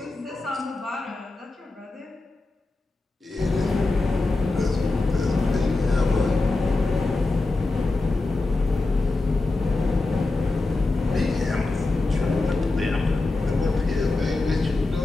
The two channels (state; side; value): quieter; right; 3.3 dB